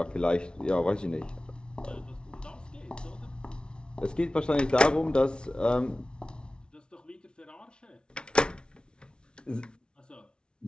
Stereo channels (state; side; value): late; right; 0.056 ms